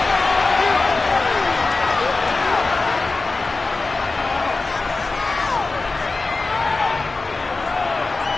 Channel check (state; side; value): quieter; right; 3.6 dB